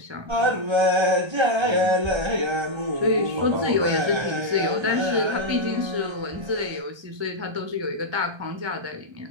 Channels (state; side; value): late; left; 1.3 ms